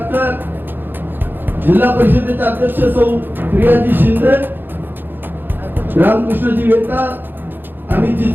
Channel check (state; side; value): late; left; 0.095 ms